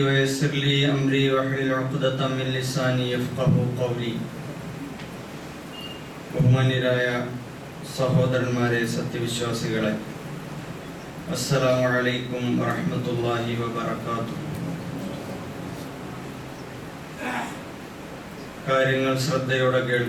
ويسر لي أمري واحلل عقدة من لساني يفقهوا قولي. ബഹുമാന്യരായ സഹോദരന്മാരെ, സത്യവിശ്വാസികളെ, അസ്സലാമു അലൈക്കും വറഹ്മത്തുള്ളാഹി വബറകാതുഹു. കാര്യങ്ങൾ ശ്രദ്ധയോടെ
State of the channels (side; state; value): both; identical; correlation 1.00